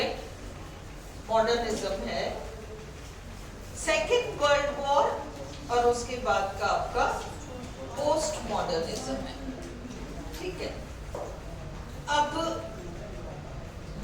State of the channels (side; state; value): both; identical; correlation 1.00